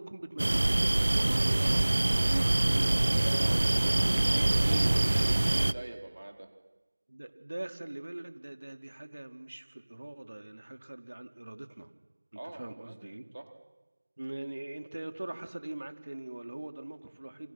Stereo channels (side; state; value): both; inverted; correlation -1.00